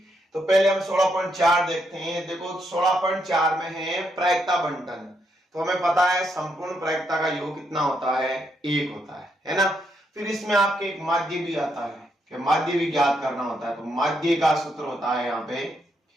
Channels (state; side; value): normal; both; correlation 0.78